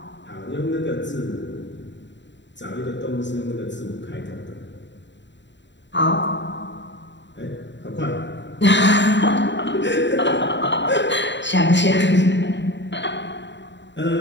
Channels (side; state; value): right; late; 0.52 ms